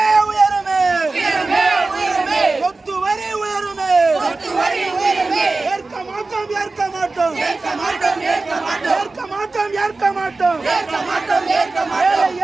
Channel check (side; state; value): left; quieter; 3.5 dB